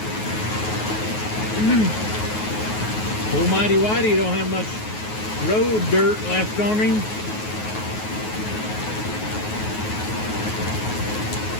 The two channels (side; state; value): right; late; 9.4 ms